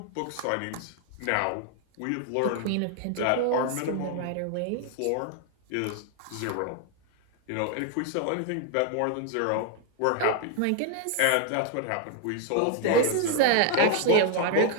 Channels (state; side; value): different; both; correlation 0.00